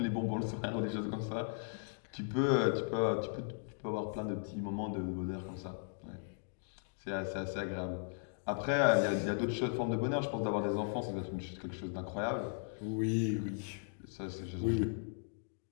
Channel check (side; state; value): right; silent; digital silence